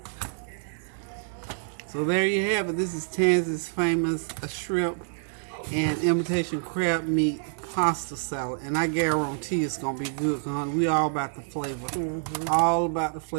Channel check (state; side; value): silent; left; 60 dB below the other